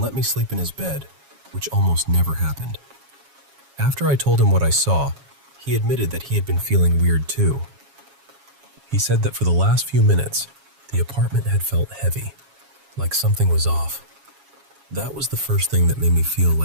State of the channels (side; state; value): left; late; 7.3 ms